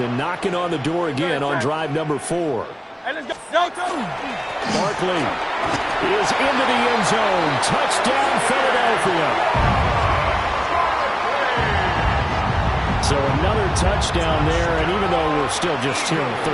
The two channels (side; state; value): both; identical; correlation 1.00